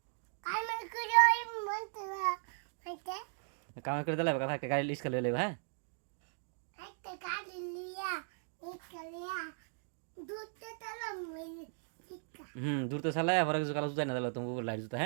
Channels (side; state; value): left; silent; digital silence